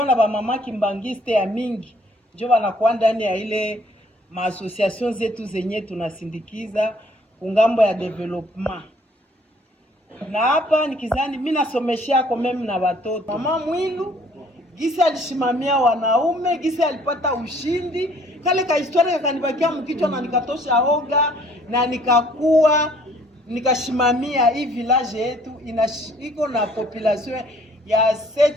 na ba mama kimbangiste ya mingi. Ndio wanakuwa ndani ya ile maassociation zetu zenye tunasindikiza kungambo ya development. Na hapa nikizani mimi nasomeshia kwa mimi na watoto. Mama Mwilu gisi alishimamia wanaume, gisi alipata ushindi. Kale ka historia kanibakia mkichwa na nikatosha oga na nikakuwa nikashimamia hii village yetu iko na population ya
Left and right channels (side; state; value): both; normal; correlation 0.59